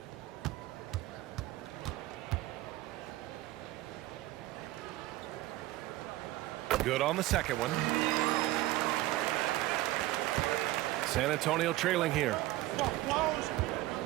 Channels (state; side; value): quieter; left; 17.1 dB